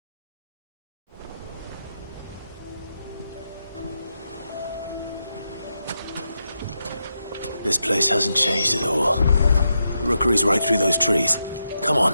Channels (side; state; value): both; inverted; correlation -0.85